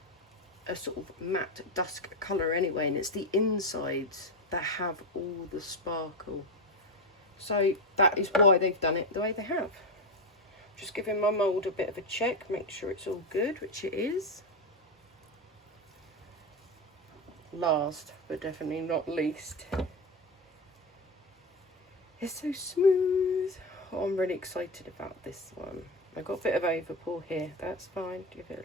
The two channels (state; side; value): normal; both; correlation 0.15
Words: a sort of matte dusk colour anyway, and it's the insides that have all the sparkle. So that is why they've done it the way they have. Just giving my mould a bit of a check, make sure it's all good, which it is. Last but definitely not least, it's so smooth. Oh, I'm really excited about this one. I got a bit of overpour here, that's fine. Give